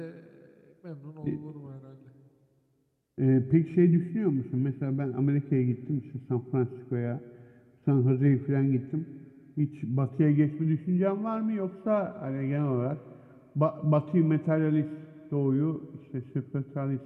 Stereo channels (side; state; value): both; identical; correlation 1.00